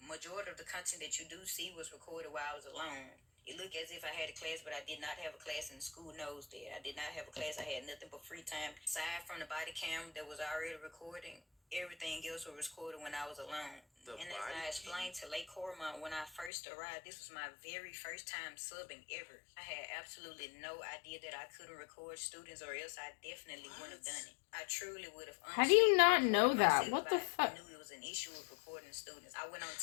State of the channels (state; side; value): drops out; right; at 16.5 s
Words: Majority of the content that you do see was recorded while I was alone. It looked as if I had a class, but I did not have a class, and the school knows that. I did not have a class. I had nothing but free time. Aside from the body cam that was already recording, everything else was recorded when I was alone. And as I explained to Lake Cormont when I first arrived, this was my very first time subbing ever. I had absolutely no idea that I couldn't record students, or else I definitely wouldn't have done it. I truly would have. How do you not know that? What the fuck? I knew it was an issue with recording students. I went on